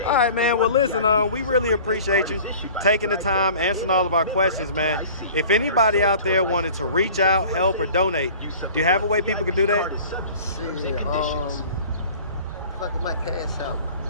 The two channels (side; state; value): both; inverted; correlation -0.45